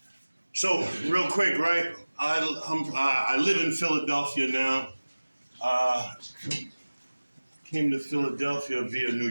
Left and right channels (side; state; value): both; inverted; correlation -1.00